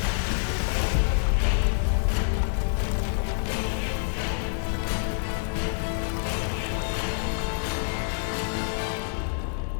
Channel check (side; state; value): right; silent; digital silence